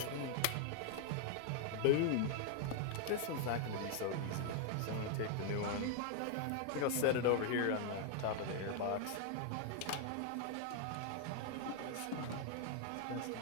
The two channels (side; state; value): both; different; correlation 0.00